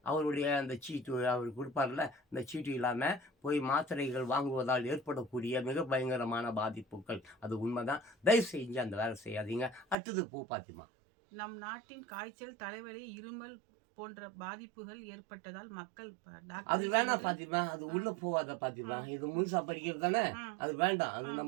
அவருடைய அந்த சீட்டு அவர் கொடுப்பார்ல, அந்த சீட்டு இல்லாமல் போய் மாத்திரைகள் வாங்குவதால் ஏற்படக்கூடிய மிக பயங்கரமான பாதிப்புகள். அது உண்மைதான். தயவு செஞ்சு அந்த வேலை செய்யாதீங்க. அடுத்தது போ பாத்திமா. நம் நாட்டின் காய்ச்சல், தலைவலி, இருமல் போன்ற பாதிப்புகள் ஏற்பட்டதால் மக்கள் அது வேணாம் பாத்திமா, அது உள்ள போவாத பாத்திமா. இது முழுசா படிக்கிறது தானே, அது வேண்டாம். அது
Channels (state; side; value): drops out; left; at 10.0 s